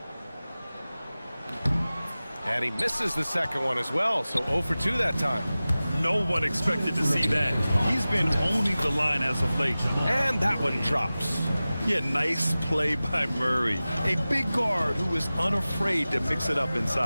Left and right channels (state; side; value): inverted; both; correlation -0.97